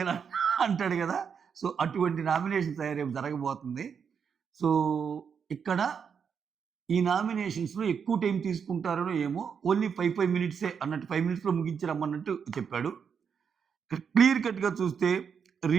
అంటాడు కదా! సో, అటువంటి నామినేషన్స్ రేపు జరగబోతుంది. సో, ఇక్కడ ఈ నామినేషన్స్‌లో ఎక్కువ టైం తీసుకుంటారనో ఏమో, ఓన్లీ 5 మినిట్సే అన్నట్టు 5 మినిట్స్‌లో ముగించి రమ్మన్నట్టు చెప్పాడు. ఇక్కడ క్లియర్ కట్‌గా చూస్తే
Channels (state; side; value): quieter; left; 6.8 dB